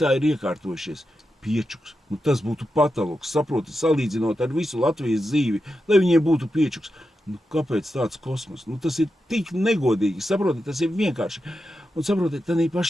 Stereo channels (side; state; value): both; normal; correlation 0.89